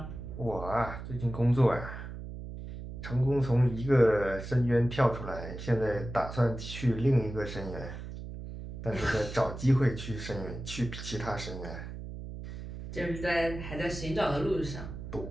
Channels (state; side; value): noise; right; hum, 9 dB below the sound